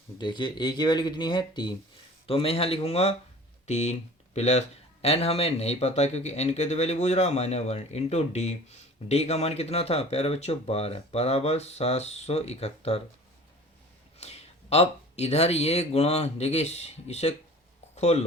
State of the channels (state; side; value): normal; both; correlation 0.44